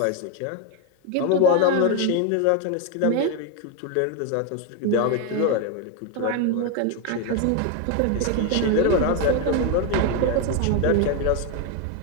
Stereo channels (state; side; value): different; both; correlation 0.02